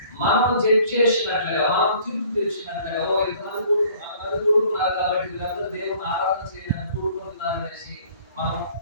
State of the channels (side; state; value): both; inverted; correlation -0.54